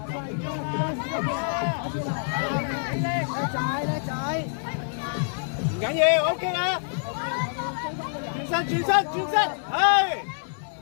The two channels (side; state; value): right; silent; 56 dB below the other